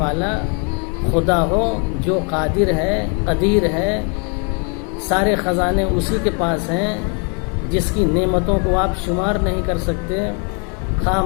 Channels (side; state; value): right; quieter; 37.0 dB